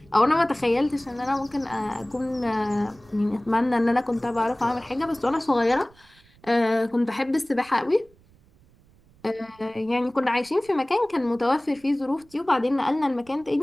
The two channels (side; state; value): right; noise; rumble, 29 dB below the sound